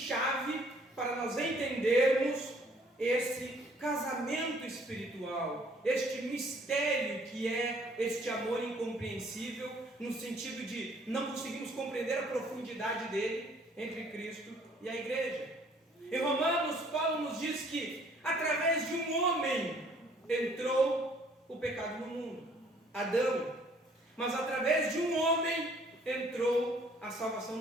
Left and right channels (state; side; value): normal; both; correlation 0.60